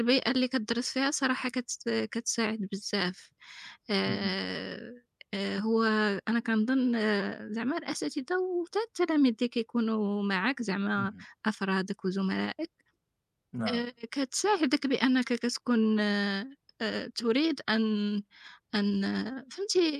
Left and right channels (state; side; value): identical; both; correlation 1.00